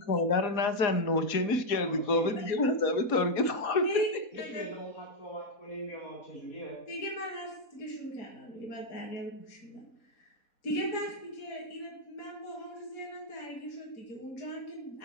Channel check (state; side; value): late; right; 4.1 ms